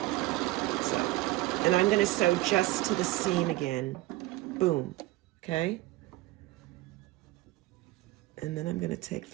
So, and I'm going to sew just to the seam again. Boom. Okay, and then I'm going to take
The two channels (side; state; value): left; quieter; 18.1 dB